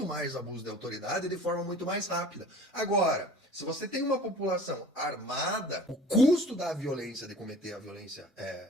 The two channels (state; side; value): normal; both; correlation 0.43